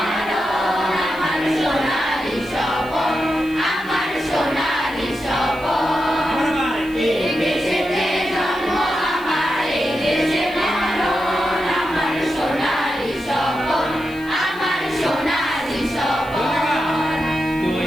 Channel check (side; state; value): left; noise; hiss, 23 dB below the sound